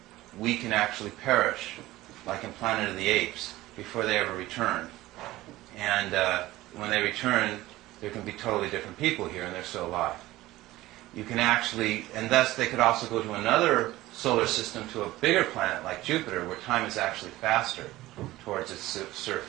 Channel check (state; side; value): quieter; left; 17.1 dB